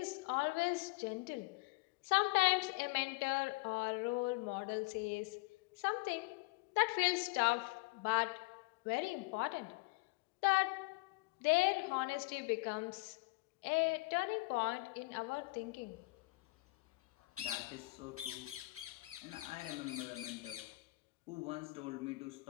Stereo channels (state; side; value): quieter; right; 24.7 dB